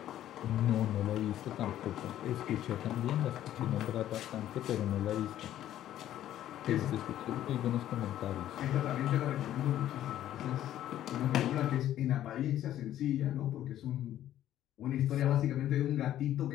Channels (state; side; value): quieter; right; 12.3 dB